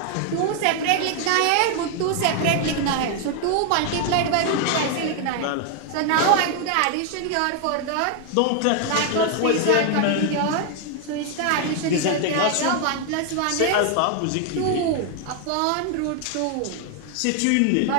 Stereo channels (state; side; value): different; both; correlation 0.00